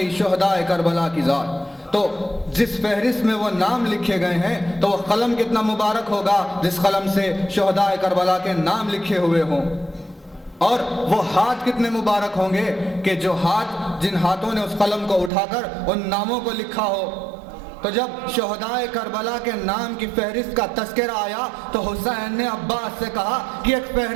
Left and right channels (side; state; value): left; drops out; at 15.3 s